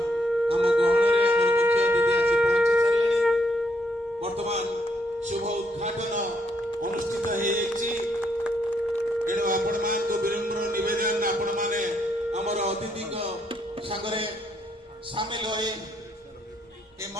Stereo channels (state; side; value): normal; both; correlation 0.74